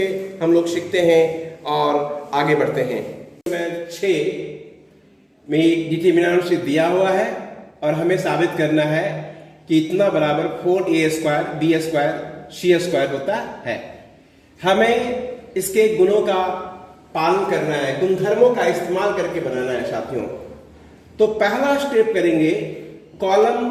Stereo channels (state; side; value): identical; both; correlation 1.00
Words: हम लोग सीखते हैं और आगे बढ़ते हैं। नंबर 6 में डिटरमिनेंट दिया हुआ है और हमें साबित करना है कि इतना बराबर 4a² b² c² होता है। हमें इसके गुणों का पालन करना है, गुणधर्मों का इस्तेमाल करके बनाना है साथियों। तो पहला स्टेप करेंगे, कॉलम